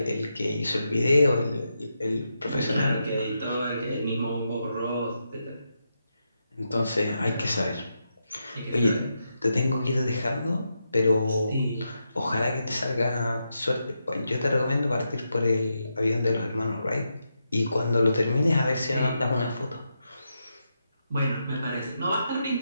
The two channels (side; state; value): both; inverted; correlation -0.85